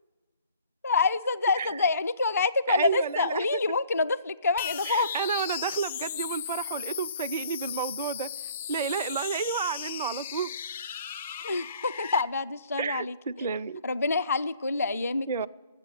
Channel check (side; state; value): both; inverted; correlation -0.54